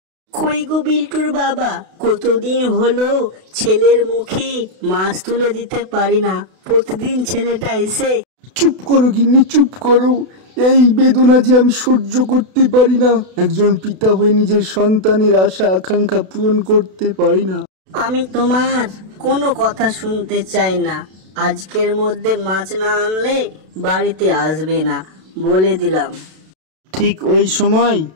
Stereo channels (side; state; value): left; late; 32 ms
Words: কই গো বিল্টুর বাবা, কতদিন হলো ছেলের মুখে মাছ তুলে দিতে পারি না। প্রতিদিন ছেলেটা এসে। চুপ করো গিন্নি, চুপ করো। এই বেদনা যে আমি সহ্য করতে পারি না। একজন পিতা হয়ে নিজের সন্তানের আশা আকাঙ্ক্ষা পূরণ করতে পারি না। আমি তোমার কোনো কথা শুনতে চাই না। আজকের মধ্যে মাছ না আনলে বাড়িতে আসবে না, বলে দিলাম। ঠিক ওই সময়